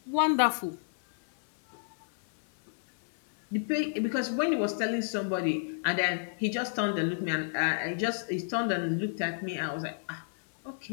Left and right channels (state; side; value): silent; right; 57 dB below the other